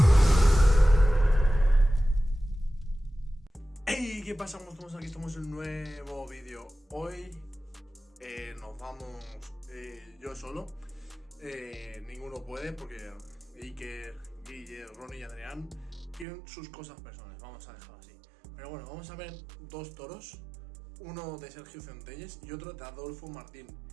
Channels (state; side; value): drops out; left; at 16.2 s